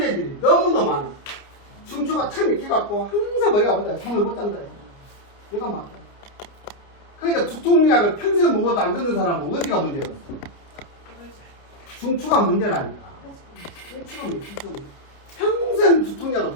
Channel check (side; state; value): right; late; 29 ms